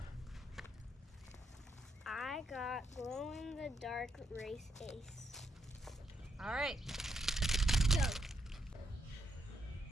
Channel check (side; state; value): both; normal; correlation 0.80